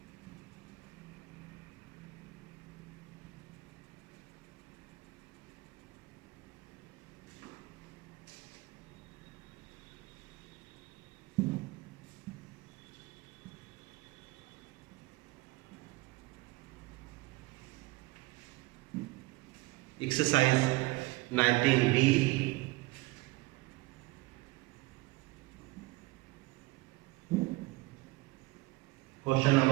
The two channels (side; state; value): left; quieter; 21.6 dB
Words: Exercise 19b. Question